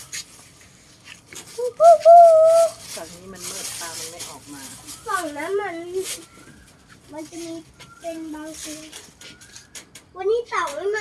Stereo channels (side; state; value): both; identical; correlation 1.00